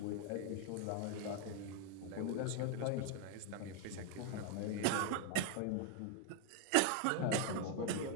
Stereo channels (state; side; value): different; both; correlation 0.00